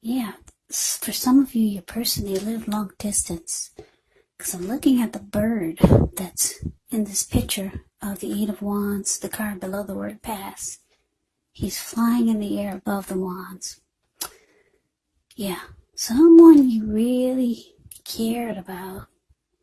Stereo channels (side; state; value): both; identical; correlation 1.00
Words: Yeah, for some of you, your person, they live long distance. Because I'm looking at the bird that's in this picture of the Eight of Wands, the card below the word pass. He's flying in the air above the wands. Yeah, someone you really cared about,